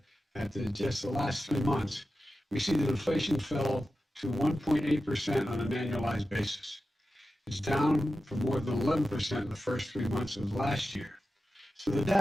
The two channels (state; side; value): normal; both; correlation 0.93